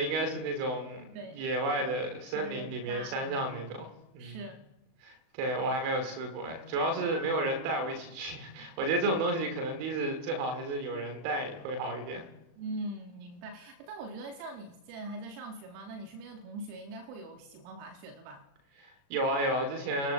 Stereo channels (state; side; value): late; left; 36 ms